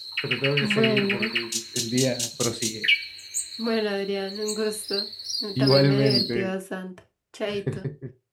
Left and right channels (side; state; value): both; identical; correlation 1.00